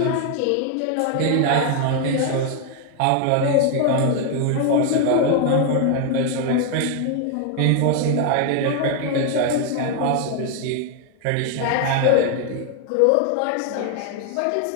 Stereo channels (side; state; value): both; different; correlation 0.00